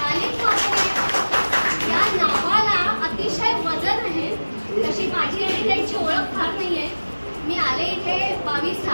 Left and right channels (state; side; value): inverted; both; correlation -1.00